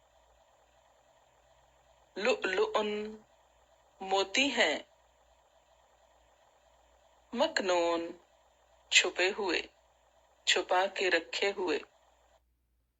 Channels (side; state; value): both; identical; correlation 1.00